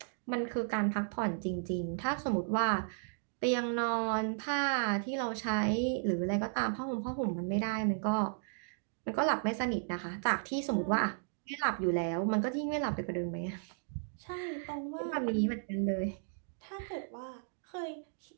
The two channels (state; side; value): silent; left; digital silence